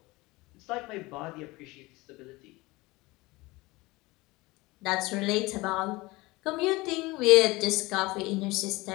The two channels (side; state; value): right; quieter; 21.9 dB